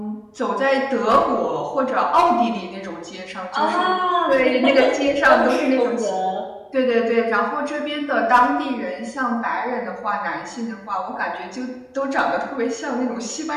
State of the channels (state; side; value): identical; both; correlation 1.00